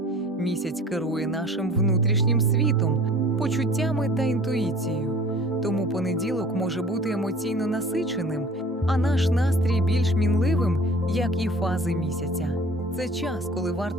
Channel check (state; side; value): normal; both; correlation 0.47